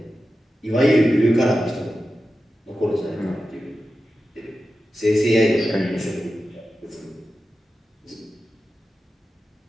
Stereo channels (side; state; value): both; normal; correlation 0.92